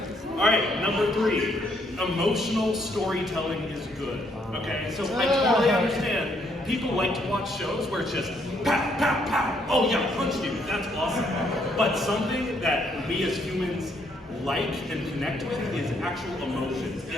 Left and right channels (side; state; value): both; normal; correlation 0.71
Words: Alright, number 3. Emotional storytelling is good. Okay, so I totally understand. People like to watch shows where it's just pow, pow, pow. Oh yeah, punch you. That's awesome. But something that we as humans like and connect with is actual emotions.